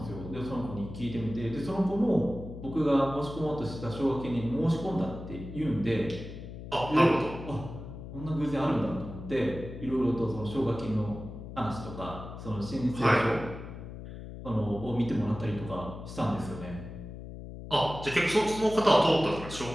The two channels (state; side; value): noise; left; hum, 11 dB below the sound